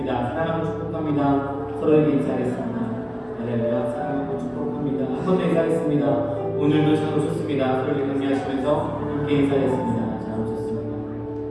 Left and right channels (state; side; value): identical; both; correlation 1.00